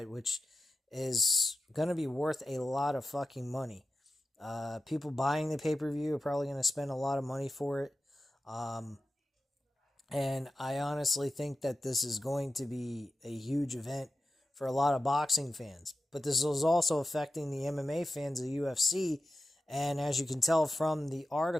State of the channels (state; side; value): normal; both; correlation 0.91